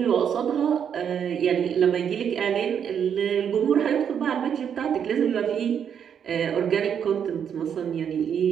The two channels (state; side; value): quieter; left; 8.1 dB